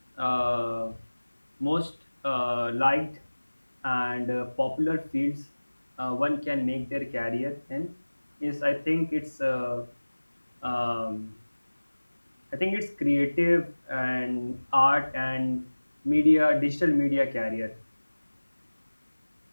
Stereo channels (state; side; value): inverted; both; correlation -1.00